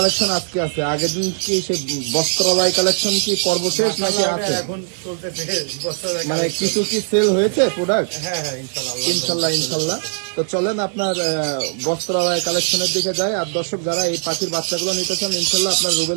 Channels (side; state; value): left; silent; digital silence